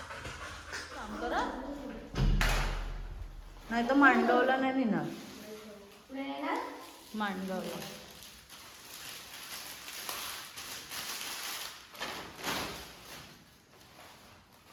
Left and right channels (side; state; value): both; identical; correlation 1.00